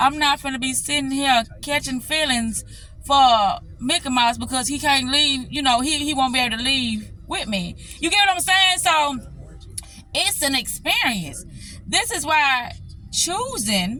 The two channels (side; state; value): both; identical; correlation 1.00